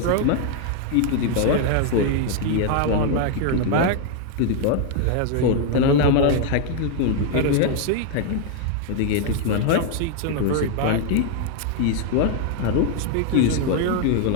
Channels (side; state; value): both; different; correlation 0.00